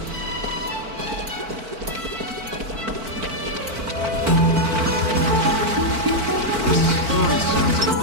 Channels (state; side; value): late; left; 4.5 ms